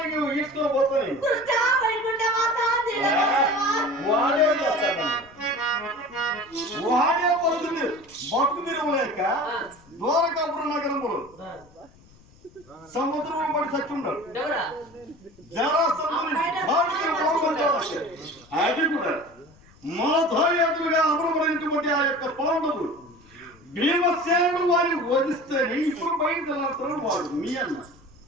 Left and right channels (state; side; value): noise; left; rumble, 27 dB below the sound